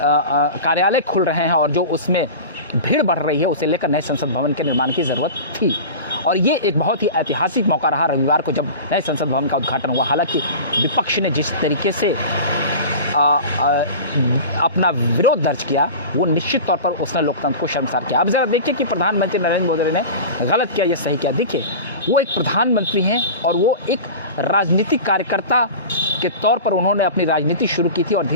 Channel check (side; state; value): both; inverted; correlation -0.33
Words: खुल रहे हैं और जो उसमें भीड़ बढ़ रही है, उसे लेकर नए संसद भवन के निर्माण की ज़रूरत थी। और ये एक बहुत ही ऐतिहासिक मौका रहा रविवार को जब नए संसद भवन का उद्घाटन हुआ। हालांकि विपक्ष ने जिस तरीके से अपना विरोध दर्ज किया, वो निश्चित तौर पर उसने लोकतंत्र को शर्मसार किया। अब ज़रा देखिए कि प्रधानमंत्री नरेंद्र मोदी ने गलत किया या सही किया। देखिए, वो एक प्रधानमंत्री हैं और वो एक राजनीतिक कार्यकर्ता के तौर पर उन्होंने अपनी राजनीति शुरू की थी और